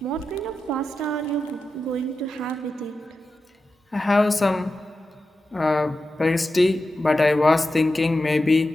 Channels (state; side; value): normal; both; correlation 0.91